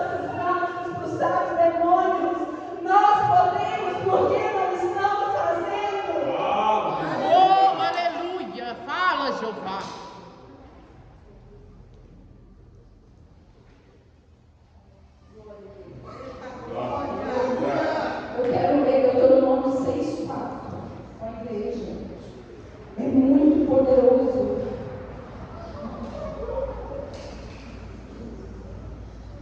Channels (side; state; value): both; identical; correlation 1.00